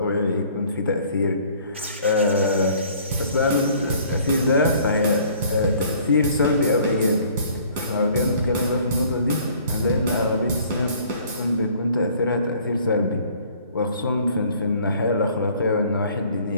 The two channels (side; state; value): both; inverted; correlation -0.56